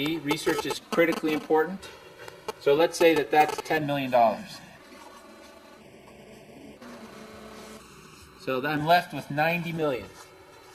Research is critically important. So let's say that that's $10 million. So I'm left with 90 million.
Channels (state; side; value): identical; both; correlation 1.00